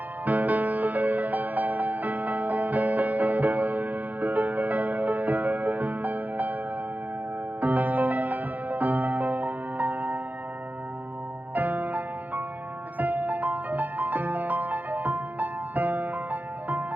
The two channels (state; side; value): late; left; 0.082 ms